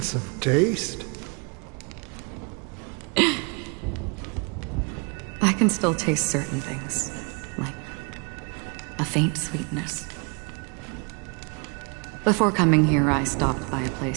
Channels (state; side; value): quieter; left; 34.1 dB